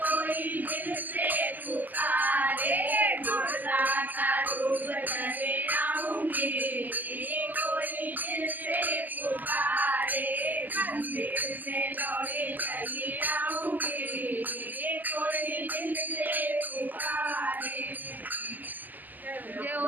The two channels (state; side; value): late; left; 0.084 ms